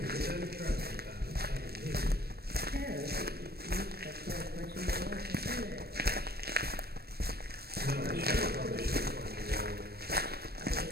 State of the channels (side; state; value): left; late; 0.46 ms